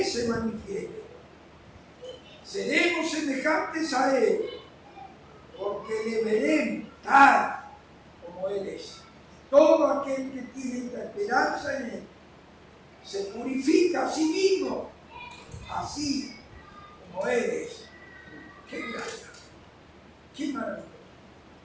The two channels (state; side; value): identical; both; correlation 1.00